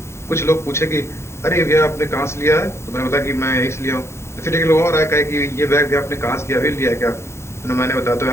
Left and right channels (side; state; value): right; late; 0.13 ms